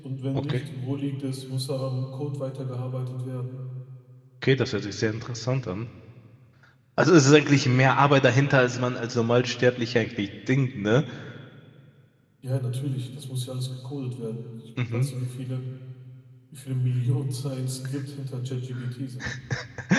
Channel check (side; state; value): both; identical; correlation 1.00